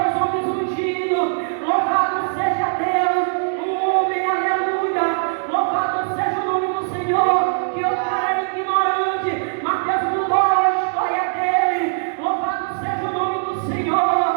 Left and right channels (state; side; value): silent; left; digital silence